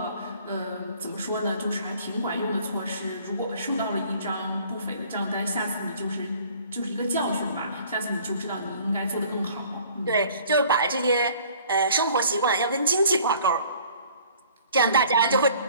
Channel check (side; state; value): both; inverted; correlation -0.53